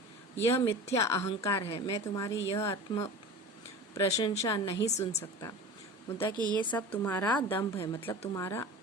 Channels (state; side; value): normal; both; correlation 0.34